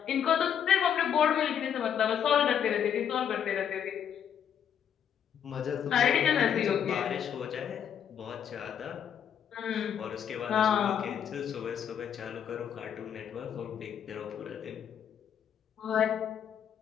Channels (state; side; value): quieter; right; 8.7 dB